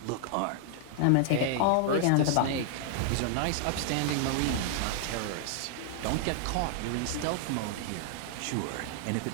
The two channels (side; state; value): both; different; correlation -0.01